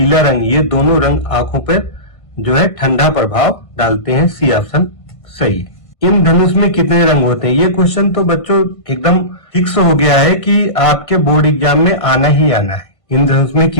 रंग, ये दोनों रंग आंखों पर जो है ठंडा प्रभाव डालते हैं। सी ऑप्शन सही है। इंद्रधनुष में कितने रंग होते हैं? ये क्वेश्चन तो बच्चों एकदम फिक्स हो गया है कि आपके बोर्ड एग्जाम में आना ही आना है। इंद्रधनुष में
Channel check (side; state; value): right; late; 1.5 ms